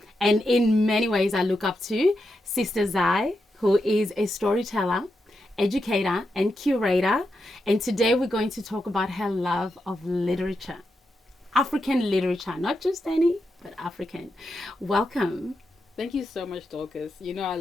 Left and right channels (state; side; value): normal; both; correlation 0.86